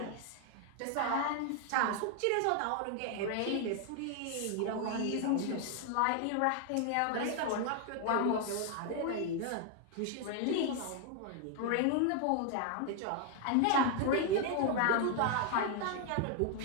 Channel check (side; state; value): both; different; correlation 0.00